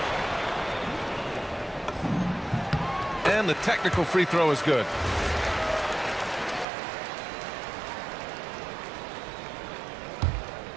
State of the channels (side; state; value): left; drops out; at 6.7 s